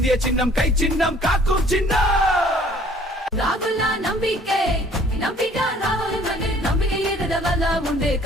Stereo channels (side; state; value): both; normal; correlation 0.56